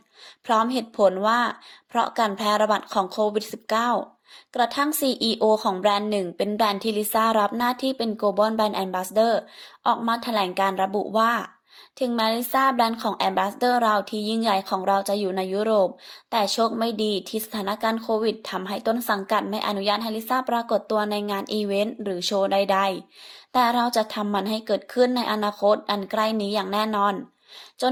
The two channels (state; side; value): identical; both; correlation 1.00